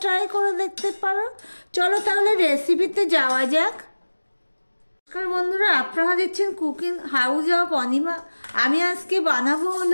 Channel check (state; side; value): inverted; both; correlation -1.00